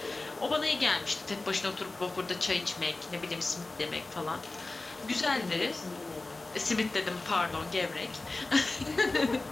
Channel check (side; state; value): right; quieter; 3.2 dB